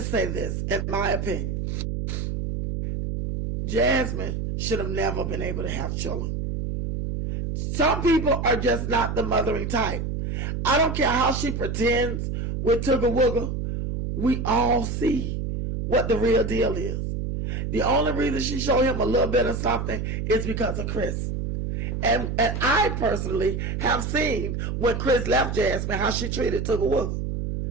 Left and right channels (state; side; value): noise; right; hum, 3 dB below the sound